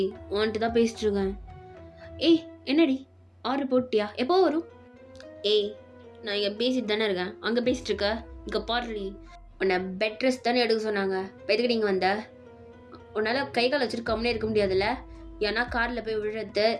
உன்ட்டு தான் பேசிட்டு இருக்கேன். என்னடி ஆர்டர் போட்டியா? எப்போ வரும்? நான் இங்கே பேசிட்டு தானே இருக்கேன். அங்கே பேசிட்டு இருக்க? இங்கே பாடுறி. உன்னை பெட் ரெஸ்ட் தானே எடுக்க சொன்னாங்க. இப்போ எதுக்கு நீங்கள் வந்த? உன்னால் கை கால் வச்சுட்டு கம்முனே இருக்க முடியாதுல்ல? ஏன்னா காரில் போய் விழுறது,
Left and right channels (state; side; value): identical; both; correlation 1.00